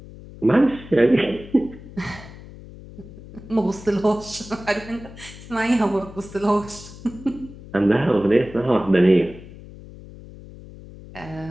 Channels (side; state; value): left; noise; hum, 17 dB below the sound